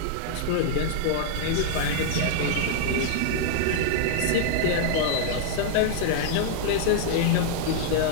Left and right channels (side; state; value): both; different; correlation -0.01